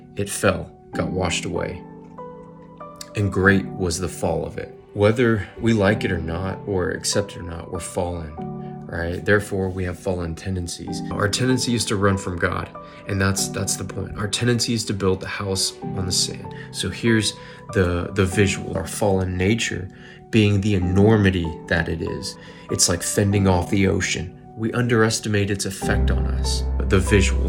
It fell, got washed away. And great was the fall of it. Whether we like it or not, or accept it or not, we're fallen, right? Therefore, we have fallen tendencies. Our tendency is to run from God, and that's the point. Our tendency is to build the house on the sand. So here's the visual. Our fallen nature being the enormity that it is. It's like fending off the ocean. We underestimate its effect on us. The visual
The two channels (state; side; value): identical; both; correlation 1.00